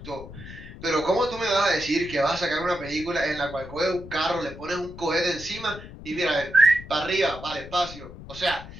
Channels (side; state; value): left; noise; rumble, 14 dB below the sound